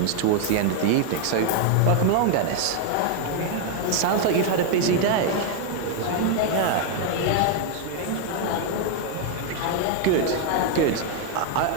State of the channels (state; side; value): different; both; correlation 0.00